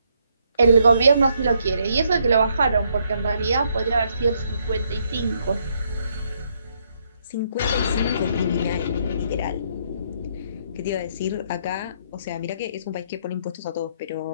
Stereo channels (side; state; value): both; inverted; correlation -0.73